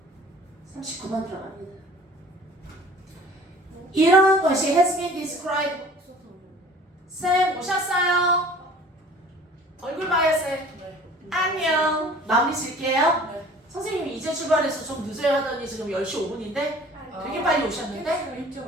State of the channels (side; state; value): both; normal; correlation 0.48